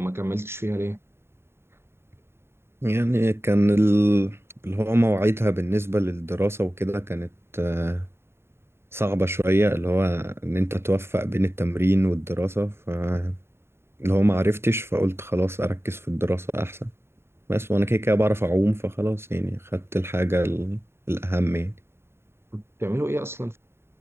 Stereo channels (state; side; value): late; left; 0.12 ms